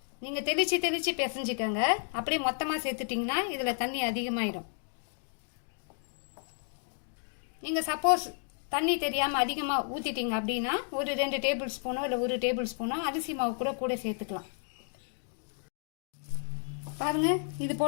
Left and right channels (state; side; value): silent; right; 56 dB below the other